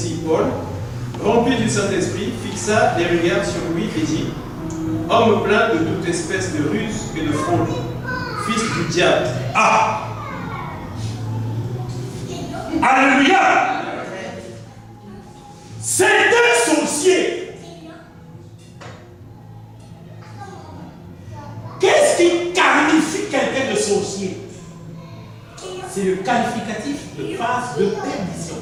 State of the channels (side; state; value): both; identical; correlation 1.00